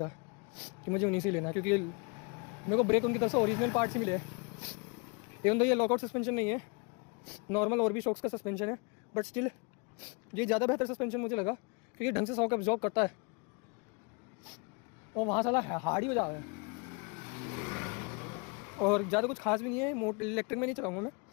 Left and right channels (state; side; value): quieter; right; 31.8 dB